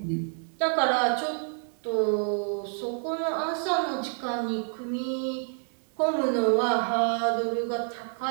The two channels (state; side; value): silent; left; 55 dB below the other